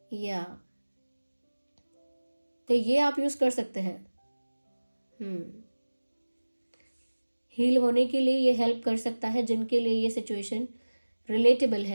या तो ये आप यूज़ कर सकते हैं। हील होने के लिए ये हेल्प कर सकता है जिनके लिए ये सिचुएशन रिलेटेबल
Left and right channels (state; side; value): inverted; both; correlation -1.00